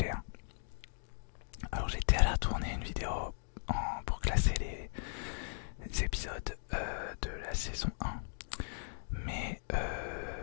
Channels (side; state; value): right; silent; digital silence